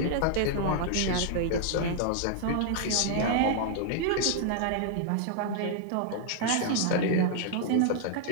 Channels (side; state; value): both; different; correlation -0.01